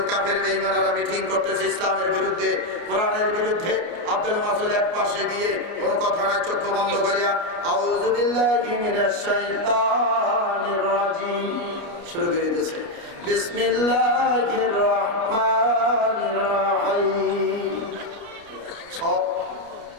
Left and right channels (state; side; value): late; left; 29 ms